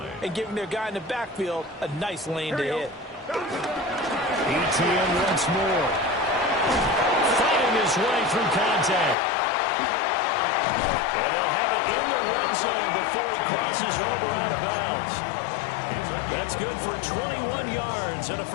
and giving their guy in the backfield a nice lane to hit. ETN once more. Fighting his way through contact. And they'll have it in the red zone before he crosses over out of bounds. That's good for 21 yards and a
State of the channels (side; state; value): right; drops out; at 9.2 s